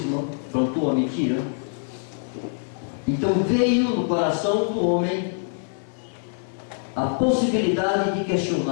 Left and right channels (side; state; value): right; silent; 62 dB below the other